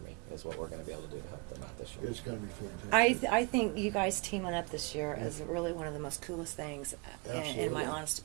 me, is what we're going to be able to do to help them out this year. It's going to be fantastic. I think you guys teaming up this year is really one of the most coolest things, in my honest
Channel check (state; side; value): quieter; left; 29.8 dB